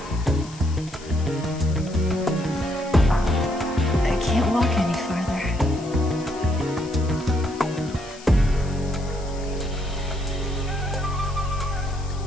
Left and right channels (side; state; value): left; noise; hiss, 19 dB below the sound